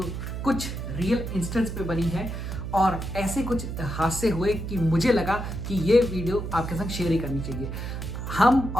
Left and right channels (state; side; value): noise; right; hum, 5 dB below the sound